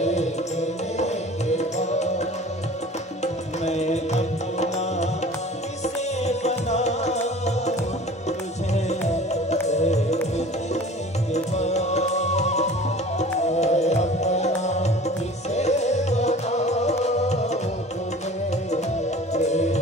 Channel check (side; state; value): both; normal; correlation 0.43